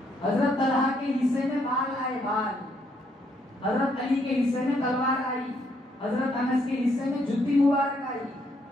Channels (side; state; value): both; normal; correlation 0.72